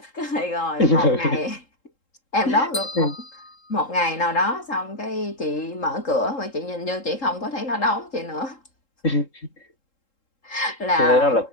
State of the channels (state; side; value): late; right; 3.7 ms